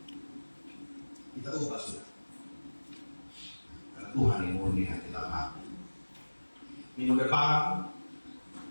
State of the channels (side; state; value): both; inverted; correlation -1.00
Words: Kita ubah sudah. Karena Tuhan yang murni hati kita hati. Minggu depan,